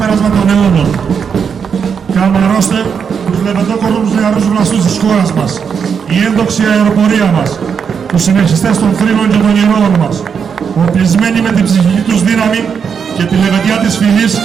των αιώνων. Καμαρώστε τους λεβεντόκορους νεαρούς βλαστούς της χώρας μας. Η έντοξη αεροπορία μας, τους συνεχιστές των θρήνων και των ηρώων μας, οπλισμένοι με την ψυχική τους δύναμη και τη λεβεντιά της φυλής,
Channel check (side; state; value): left; quieter; 6.7 dB